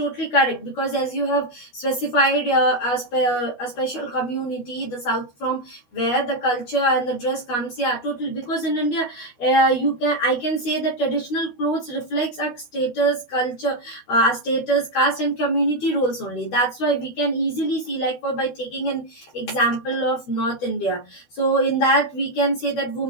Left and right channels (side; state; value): right; late; 12 ms